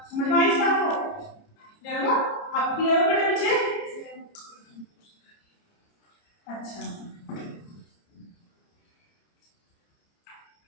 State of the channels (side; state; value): right; late; 30 ms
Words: समझ में आई इस बात को, क्लियर हुआ, आप क्लियर हो बेटा पीछे, अच्छा